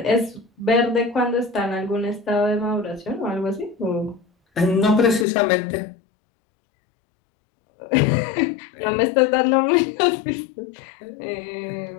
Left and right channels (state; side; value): drops out; right; at 5.2 s